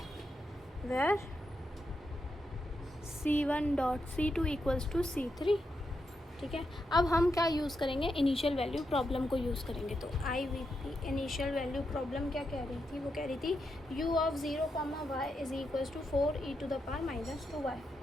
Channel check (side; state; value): both; normal; correlation 0.84